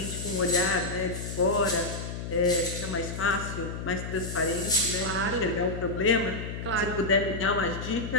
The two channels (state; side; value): noise; left; hum, 6 dB below the sound